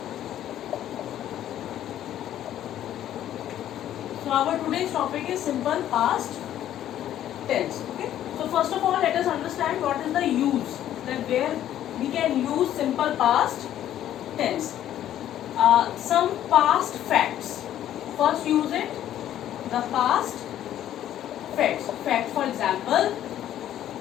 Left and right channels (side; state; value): right; quieter; 11.7 dB